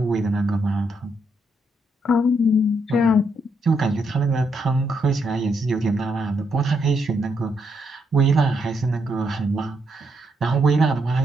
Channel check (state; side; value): normal; both; correlation 0.77